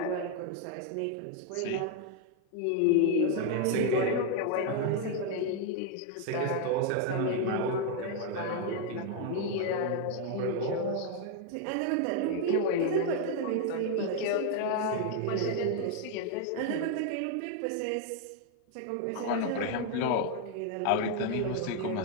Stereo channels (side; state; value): both; different; correlation 0.01